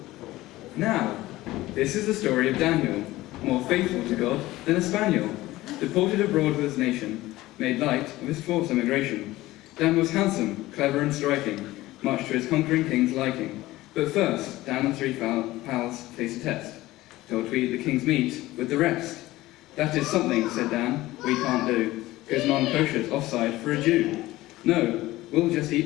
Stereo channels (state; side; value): quieter; right; 17.5 dB